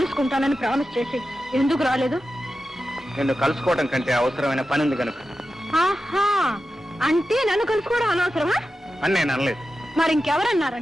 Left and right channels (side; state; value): both; normal; correlation 0.92